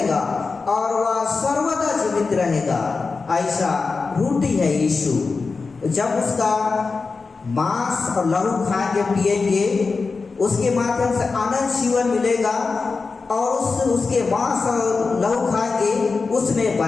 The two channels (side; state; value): right; quieter; 4.4 dB